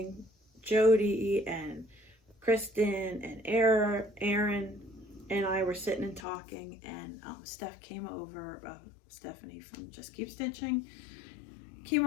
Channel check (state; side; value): drops out; right; at 6.2 s